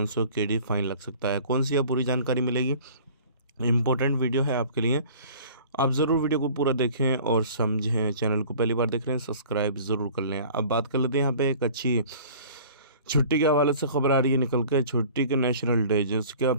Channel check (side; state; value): both; inverted; correlation -0.47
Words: KD फाइन लग सकता है। कौन सी है पूरी जानकारी मिलेगी। इम्पोर्टेंट वीडियो है आपके लिए, आप ज़रूर वीडियो को पूरा देखें और समझें। चैनल को पहली बार देख रहे हैं सब्सक्राइब ज़रूर कर लें। अब बात कर लेते हैं यहाँ पे एक अच्छी छुट्टी के हवाले से खबर आ रही है निकल के। छुट्टी के नेशनल डे जिसका